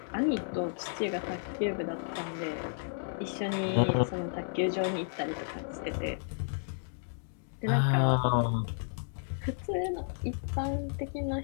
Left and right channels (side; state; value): right; silent; digital silence